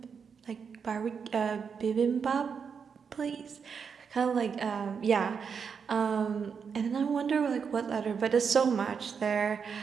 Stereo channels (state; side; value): quieter; left; 6.3 dB